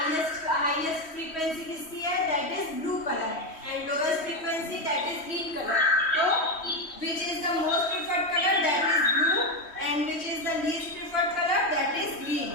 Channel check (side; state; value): right; late; 3.1 ms